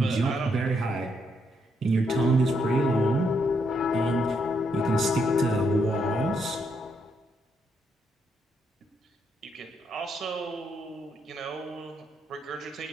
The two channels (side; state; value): both; normal; correlation 0.77